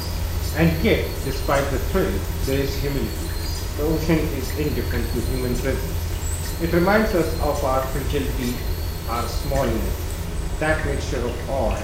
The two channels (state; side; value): identical; both; correlation 1.00